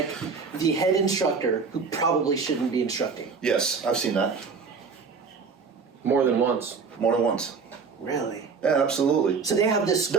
the head instructor who probably shouldn't be instructing? Yes, I've seen that More than once. more than once. Really? Yeah, absolutely. So they have this.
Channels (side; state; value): left; quieter; 5.2 dB